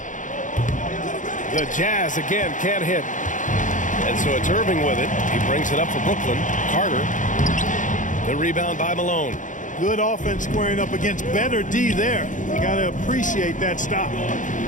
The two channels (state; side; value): late; right; 0.37 ms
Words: The Jazz again can't hit. And so it's Irving with it. He brings it up for Brooklyn. Carter. The rebound by Malone. Good offense squaring up against better D there. You got to appreciate that stop.